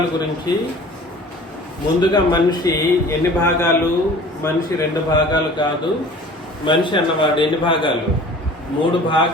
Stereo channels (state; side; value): normal; both; correlation 0.45